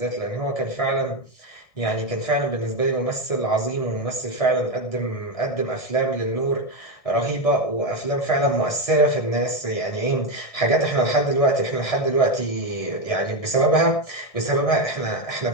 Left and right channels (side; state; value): right; late; 1.7 ms